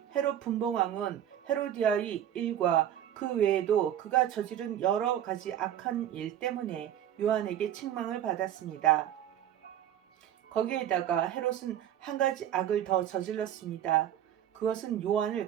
헤롯 분봉왕은 헤로디아의 일과 그 외에도 그가 저지른 여러 가지 악한 일 때문에 요한에게 책망을 받았습니다. 거기에다가 헤롯은 한 가지 악을 더 저질렀습니다. 그것은 요한을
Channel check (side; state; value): left; quieter; 10.8 dB